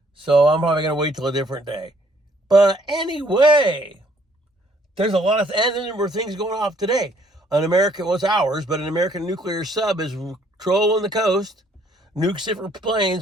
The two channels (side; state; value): both; normal; correlation 0.64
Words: So I'm probably going to wait till a different day. But anyway, there's a lot of, and there were things going off today. An American, well, it's ours, but an American nuclear sub is trolling the coast. Nukes different